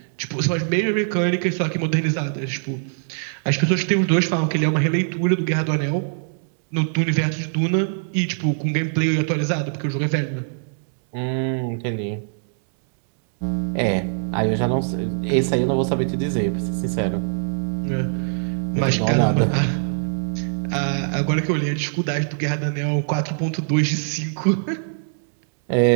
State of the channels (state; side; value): silent; left; digital silence